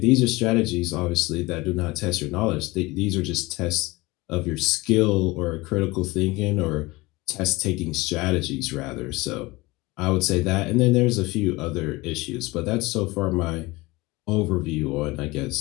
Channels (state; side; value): quieter; right; 22.1 dB